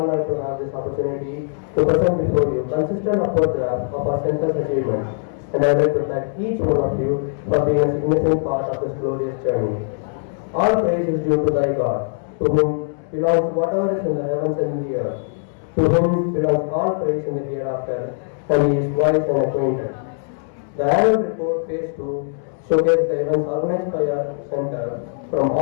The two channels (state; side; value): silent; right; 65 dB below the other